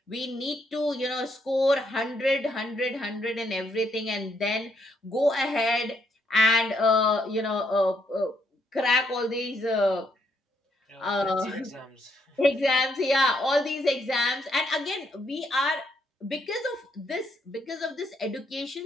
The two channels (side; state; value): both; normal; correlation 0.74